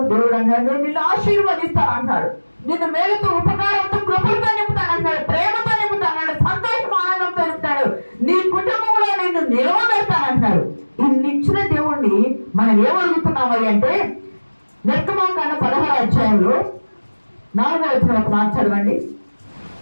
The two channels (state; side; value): inverted; both; correlation -1.00